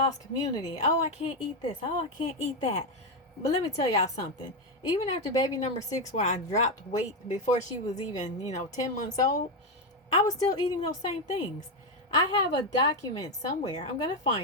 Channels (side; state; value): both; normal; correlation 0.07